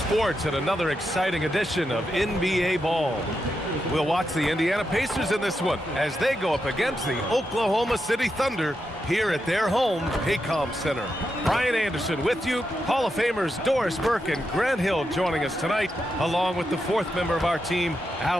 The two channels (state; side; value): normal; both; correlation 0.85